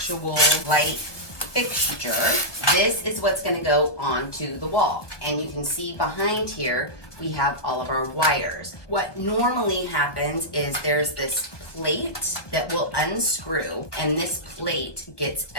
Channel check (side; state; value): right; late; 1.4 ms